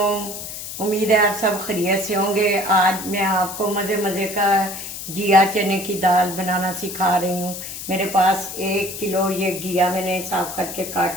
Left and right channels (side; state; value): left; noise; hiss, 9 dB below the sound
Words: उम्मीद है आप सब खैरियत से होंगे। आज मैं आपको मज़े मज़े का घिया चने की दाल बनाना सिखा रही हूँ। मेरे पास 1 किलो ये घिया मैंने साफ करके काट